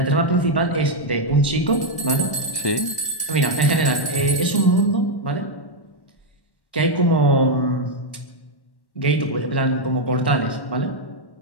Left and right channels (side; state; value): right; late; 1.1 ms